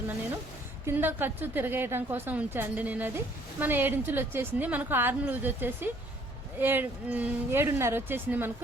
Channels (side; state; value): both; normal; correlation 0.61